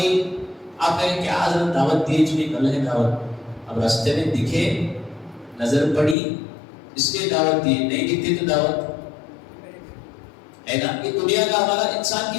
آپ کہیں کیا حضرت دعوت دی چلی کل ہے دعوت، اب راستے میں دکھے نظر پڑی اس لیے دعوت دی، نہیں دکھتی تو دعوت ہے نا؟ یہ دنیا کا ہمارا انسان کی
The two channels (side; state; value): right; drops out; at 6.2 s